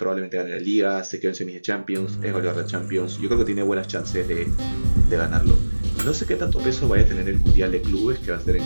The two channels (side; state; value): both; inverted; correlation -1.00